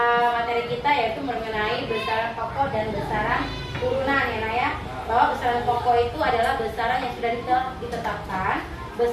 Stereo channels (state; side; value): identical; both; correlation 1.00